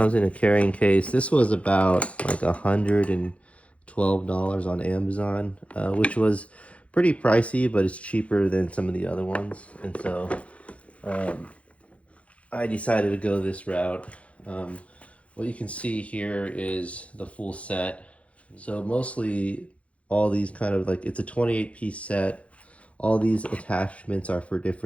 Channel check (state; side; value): late; right; 0.063 ms